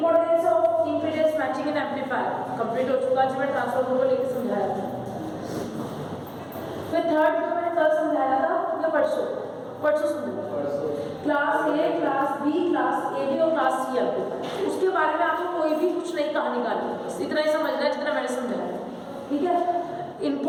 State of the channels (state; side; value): identical; both; correlation 1.00